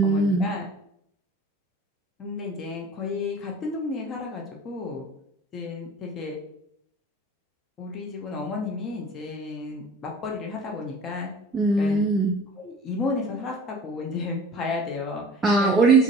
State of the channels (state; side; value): normal; both; correlation 0.44